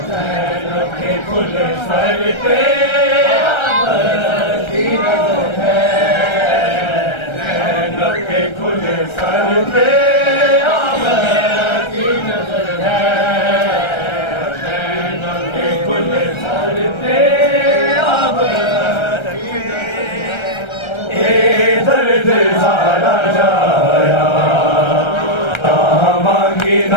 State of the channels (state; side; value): late; right; 1.3 ms